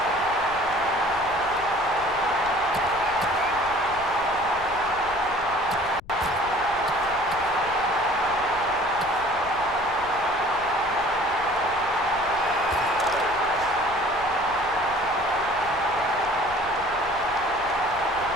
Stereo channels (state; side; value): noise; left; rumble, 18 dB below the sound